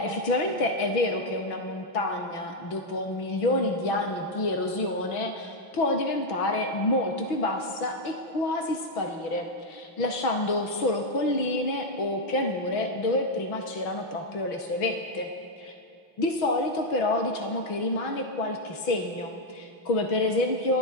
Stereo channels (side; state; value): right; late; 6.1 ms